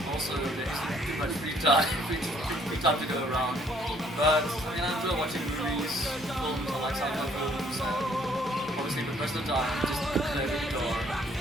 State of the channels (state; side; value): normal; both; correlation 0.63